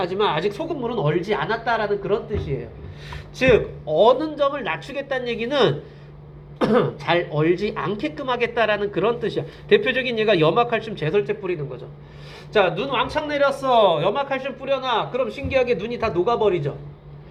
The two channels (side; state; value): both; identical; correlation 1.00